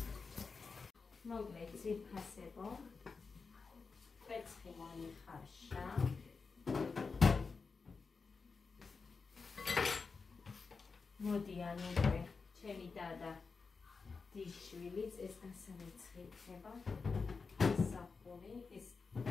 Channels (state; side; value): quieter; right; 4.7 dB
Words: Mogleci pasebo. Კვერცხი მოიხარშა. მოდი ანუე, ჩემი დადა დიშვილიც ეს გასარეცხი იქნება. ეს საფური, ეს